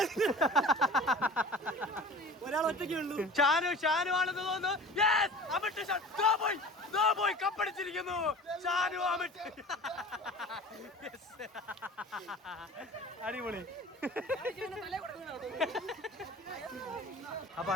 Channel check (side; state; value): both; normal; correlation 0.40